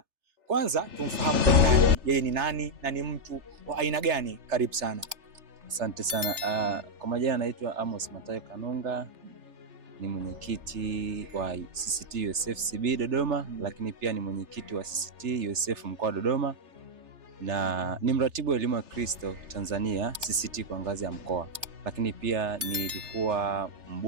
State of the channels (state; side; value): late; left; 3.3 ms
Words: Kwanza tumfahamu nani, yeye ni nani na ni mtu wa aina gani? Karibu sana. Asante sana. Kwa majina naitwa Amos Matayo Kanunga, ni mwenyekiti wa CCT USF CB Dodoma, lakini pia ni mwenyekiti wa CCT USF mkoa wa Dodoma na ni mratibu wa elimu ya Kristo Tanzania CCT kwa ngazi ya mkoa. Lakini pia nilikuwa